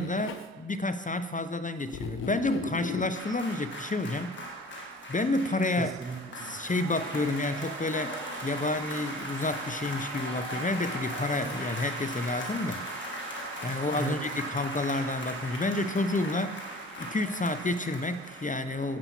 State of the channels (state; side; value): normal; both; correlation 0.45